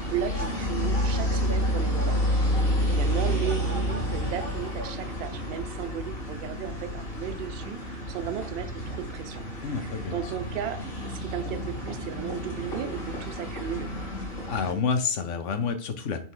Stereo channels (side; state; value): right; late; 2.7 ms